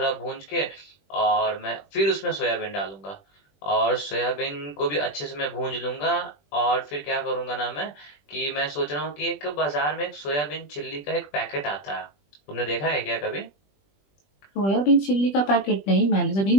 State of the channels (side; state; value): right; late; 20 ms